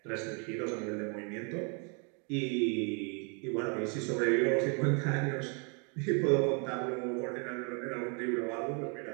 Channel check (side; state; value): left; quieter; 36.1 dB